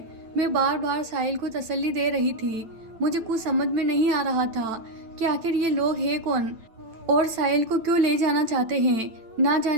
मैं बार बार साहिल को तसल्ली दे रही थी। मुझे कुछ समझ में नहीं आ रहा था कि आखिर ये लोग हैं कौन और साहिल को क्यों ले जाना चाहते हैं। ना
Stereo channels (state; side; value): late; left; 9.0 ms